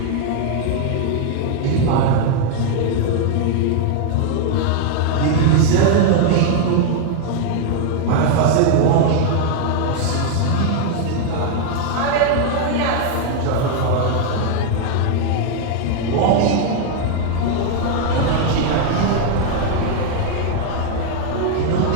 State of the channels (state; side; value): different; both; correlation 0.00